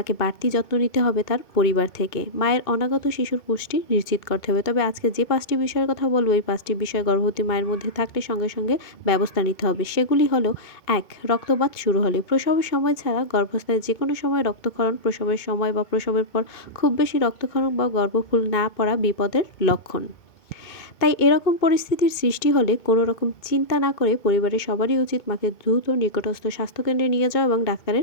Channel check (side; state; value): right; late; 2.2 ms